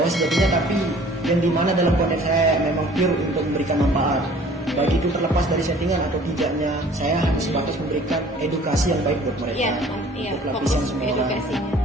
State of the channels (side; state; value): both; normal; correlation 0.51